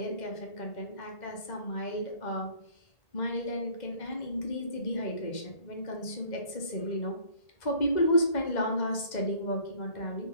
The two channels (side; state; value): right; late; 2.0 ms